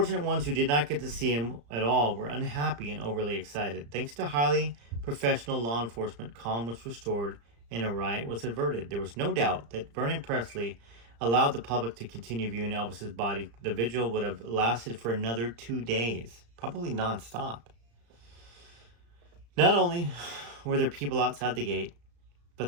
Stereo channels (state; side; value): late; left; 35 ms